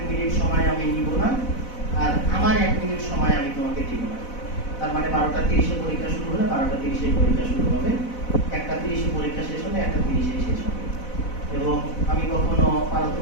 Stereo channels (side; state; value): right; late; 4.0 ms